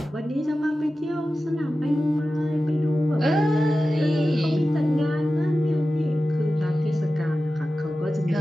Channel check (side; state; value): both; normal; correlation 0.94